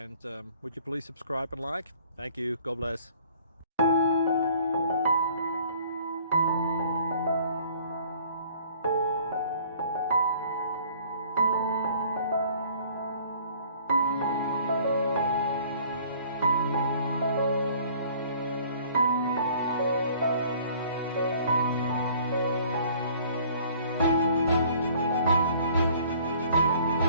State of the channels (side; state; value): both; inverted; correlation -0.54